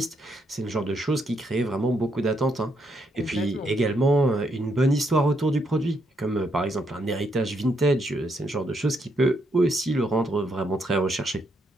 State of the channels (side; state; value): both; normal; correlation 0.76